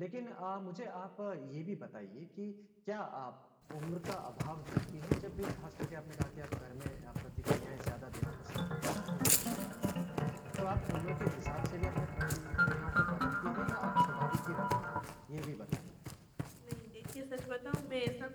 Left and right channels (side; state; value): both; identical; correlation 1.00